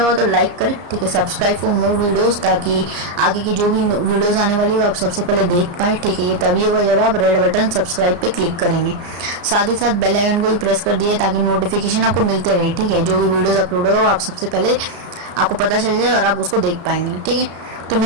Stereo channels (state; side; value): late; left; 34 ms